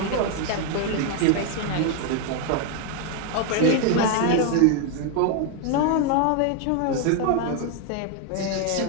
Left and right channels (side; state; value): both; different; correlation 0.01